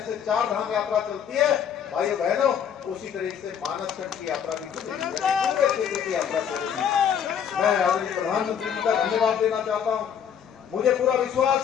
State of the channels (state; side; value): quieter; right; 8.3 dB